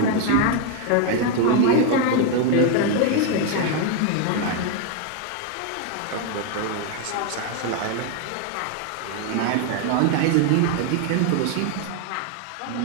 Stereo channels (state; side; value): different; both; correlation 0.01